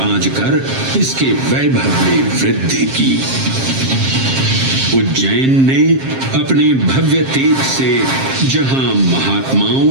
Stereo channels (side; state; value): left; late; 7.5 ms